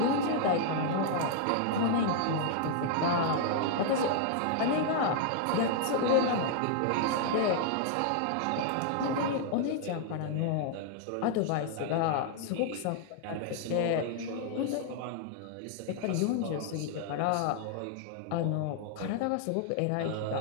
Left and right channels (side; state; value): both; different; correlation -0.01